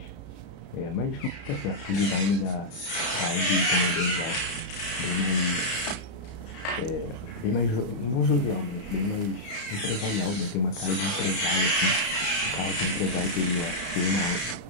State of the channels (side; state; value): right; late; 33 ms